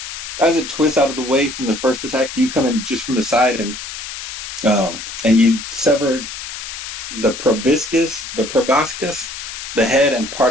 As it twists out of the way from the first attack, you come in just from the side and you sever the proboscis, the head, and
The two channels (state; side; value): noise; left; hiss, 9 dB below the sound